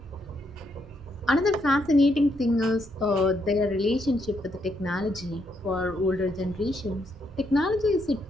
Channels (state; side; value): normal; both; correlation 0.77